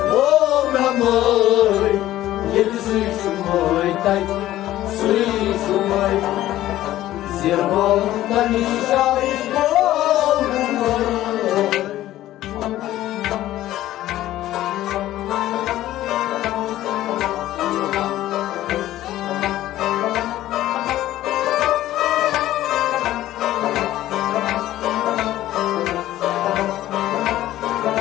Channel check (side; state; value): right; quieter; 14.3 dB